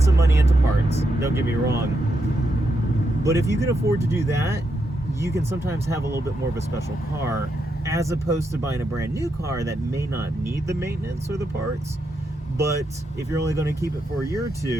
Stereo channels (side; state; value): both; normal; correlation 0.82